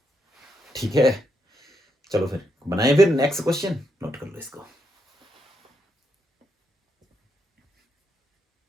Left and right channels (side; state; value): both; normal; correlation 0.80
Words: ठीक है, चलो फिर बनाए फिर नेक्स्ट क्वेश्चन, नोट कर लो इसको।